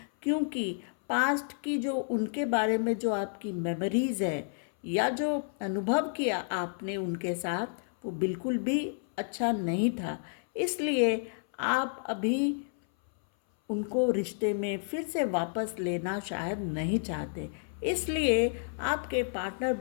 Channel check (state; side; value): silent; right; 57 dB below the other